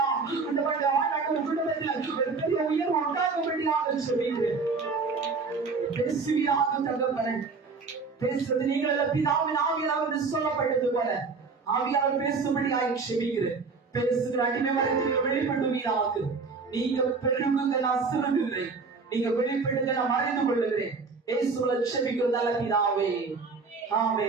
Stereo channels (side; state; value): left; quieter; 4.5 dB